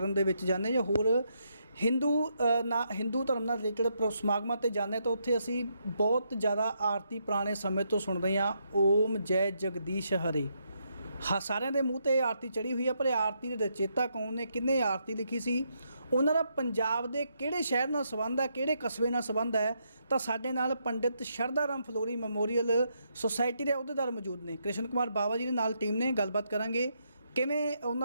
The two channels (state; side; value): inverted; both; correlation -0.78